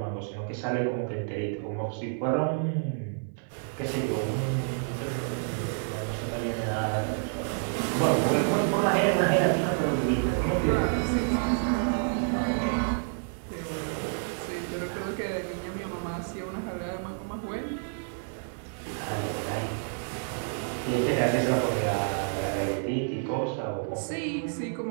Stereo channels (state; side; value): silent; left; 58 dB below the other